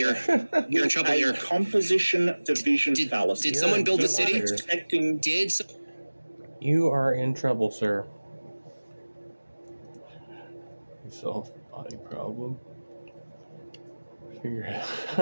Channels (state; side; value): inverted; both; correlation -1.00